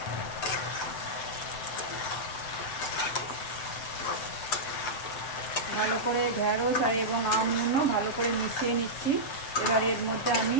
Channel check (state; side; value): late; right; 7.5 ms